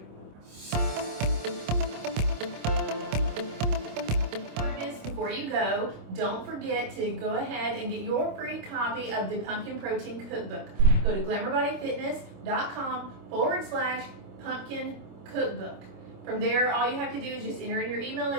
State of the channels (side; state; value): left; late; 26 ms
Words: Before you go, don't forget to go ahead and get your free copy of the Pumpkin Protein Cookbook. Go to glamourbodyfitness.com/pumpkin cookbook. From there, all you have to do is just enter in your email